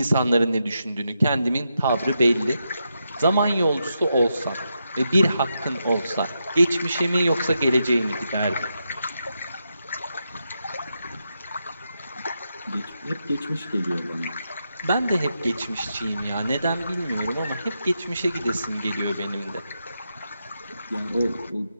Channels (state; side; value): inverted; both; correlation -0.85